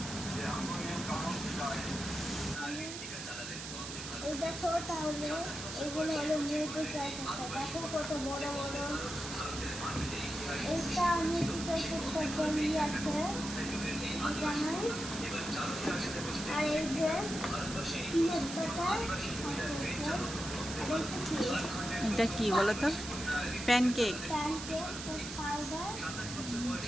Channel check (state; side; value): noise; right; hiss, 8 dB below the sound